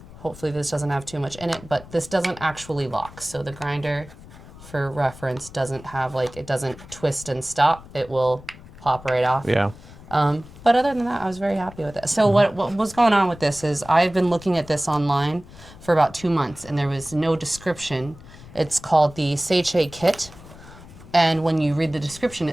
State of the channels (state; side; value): noise; left; rumble, 19 dB below the sound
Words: hopefully this doesn't have too much in it, but this doesn't actually lock. So the grinder, for reference, doesn't have it doesn't twist and stop. It will pop right off. Yeah. But other than that, I was very happy with it. So what was going on with this is I've been looking at this online for about 2 months, and there was no description. It's called the Seiche kit, and when you read the description,